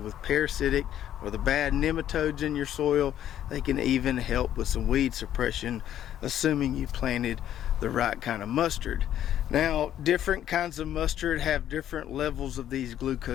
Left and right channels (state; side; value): quieter; right; 11.2 dB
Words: parasitic or the bad nematodes in your soil. They can even help with some weed suppression, assuming you planted the right kind of mustard. Now, different kinds of mustard have different levels of these